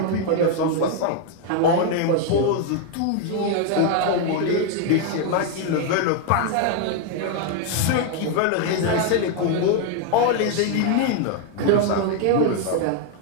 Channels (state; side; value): different; both; correlation 0.01